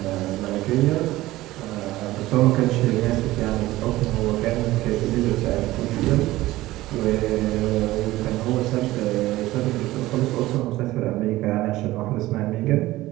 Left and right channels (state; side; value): quieter; left; 17.2 dB